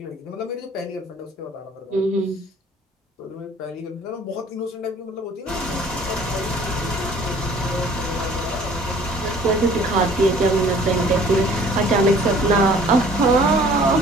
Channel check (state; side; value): normal; both; correlation 0.53